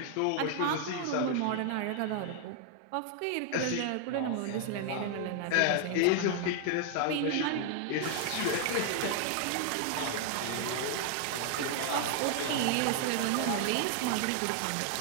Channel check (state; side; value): different; both; correlation 0.00